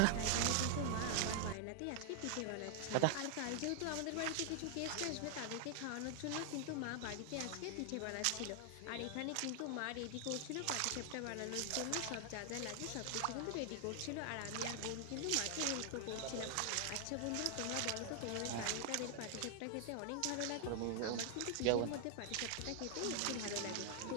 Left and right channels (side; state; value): both; different; correlation 0.00